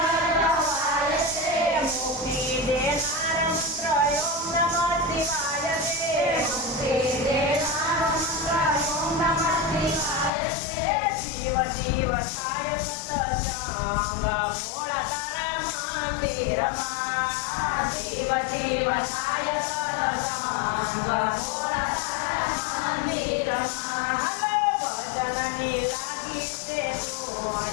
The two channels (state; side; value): drops out; right; at 10.3 s